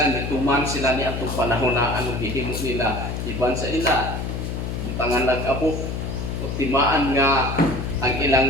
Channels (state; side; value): noise; left; hum, 4 dB below the sound